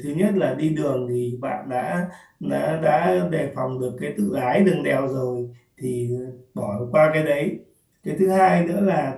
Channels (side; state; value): both; identical; correlation 1.00